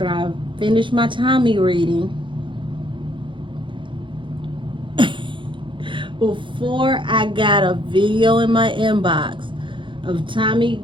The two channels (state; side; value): late; left; 0.24 ms